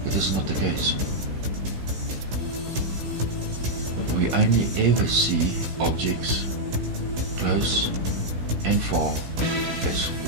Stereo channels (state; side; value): late; left; 16 ms